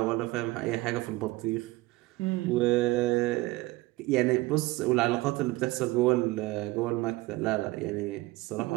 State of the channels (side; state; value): left; quieter; 20.2 dB